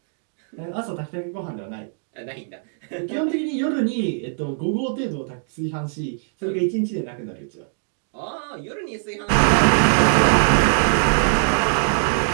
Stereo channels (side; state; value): left; silent; digital silence